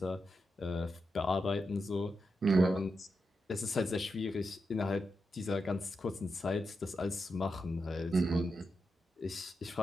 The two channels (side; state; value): both; normal; correlation 0.87